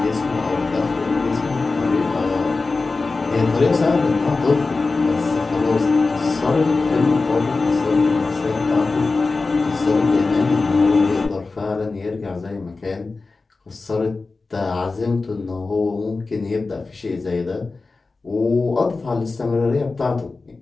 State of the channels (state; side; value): quieter; right; 3.8 dB